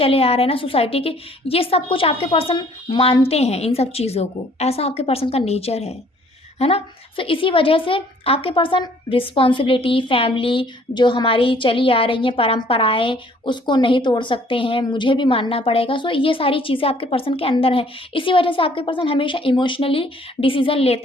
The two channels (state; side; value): normal; both; correlation 0.59